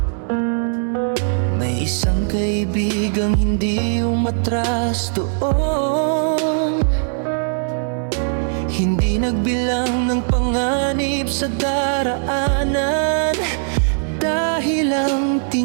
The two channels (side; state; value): left; silent; digital silence